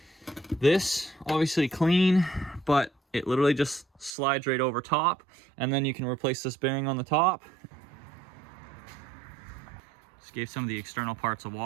This obviously clean, but it literally just slides right over top, and then you can replace this bearing on the top. Just gave some of the external parts a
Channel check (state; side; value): drops out; left; at 4.2 s